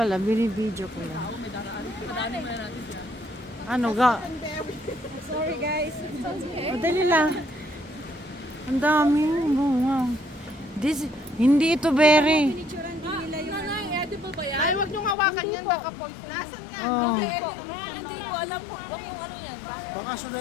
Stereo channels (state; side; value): drops out; right; at 15.2 s